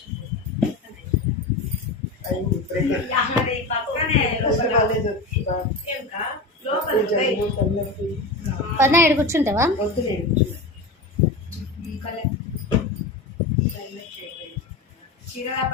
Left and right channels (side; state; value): right; quieter; 3.1 dB